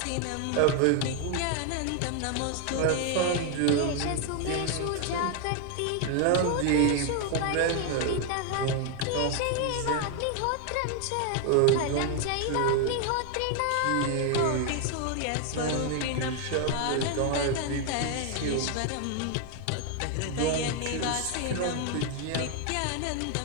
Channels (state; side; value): different; both; correlation 0.00